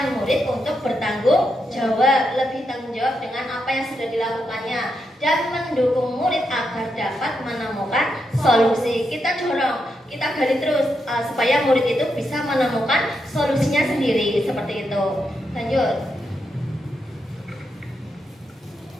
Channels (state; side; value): normal; both; correlation 0.83